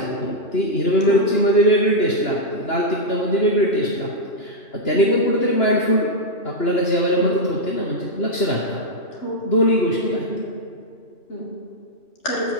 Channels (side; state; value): right; late; 2.9 ms